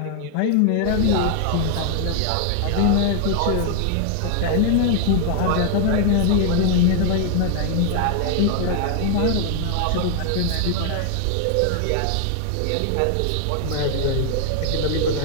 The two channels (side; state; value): both; different; correlation 0.00